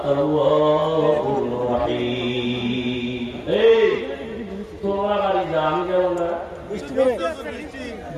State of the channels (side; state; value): both; identical; correlation 1.00